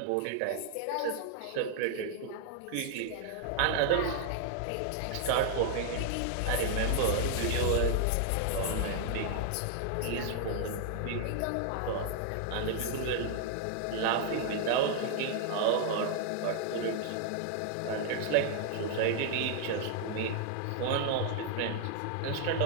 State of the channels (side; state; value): both; different; correlation 0.00